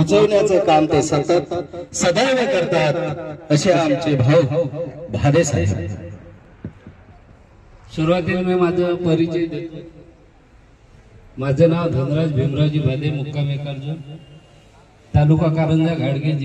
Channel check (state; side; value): identical; both; correlation 1.00